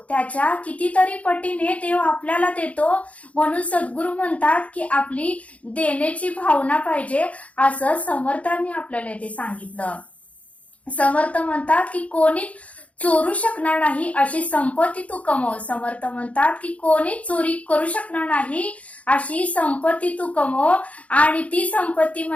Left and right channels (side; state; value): right; late; 0.066 ms